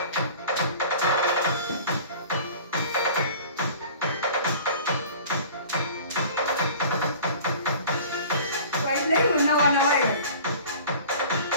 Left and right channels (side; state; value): both; inverted; correlation -0.44